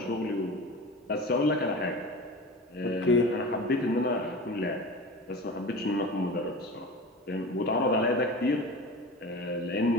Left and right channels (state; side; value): normal; both; correlation 0.33